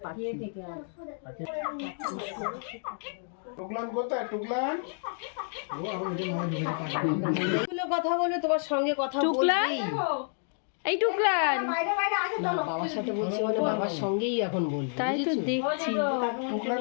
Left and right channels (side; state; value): right; silent; 58 dB below the other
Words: পাখি টুকলান কোথায়? টুকলান কথা বলে তোমার সঙ্গে কথা টুকলান, এই টুকলান, না বাবার সাথে বলছি মানে বাবার সঙ্গেই এখন বলবো। তাই তো দেখছি।